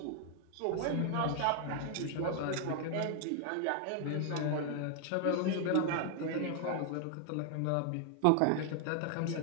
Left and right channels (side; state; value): both; different; correlation 0.00